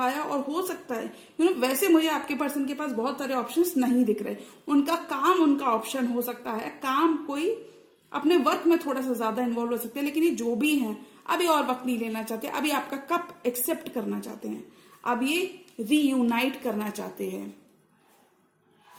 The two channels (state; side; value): identical; both; correlation 1.00